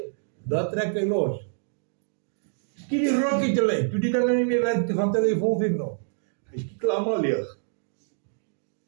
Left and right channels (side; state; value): left; silent; digital silence